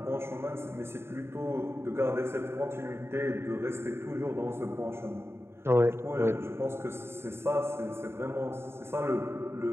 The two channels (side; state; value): left; late; 0.12 ms